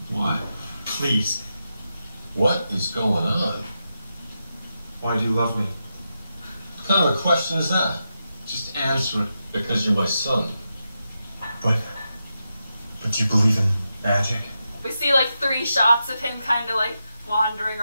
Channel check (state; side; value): inverted; both; correlation -0.88